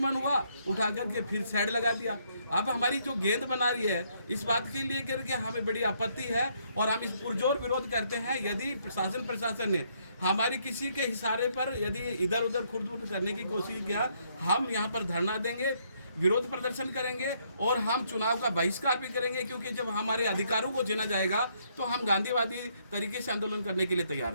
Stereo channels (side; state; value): both; inverted; correlation -0.71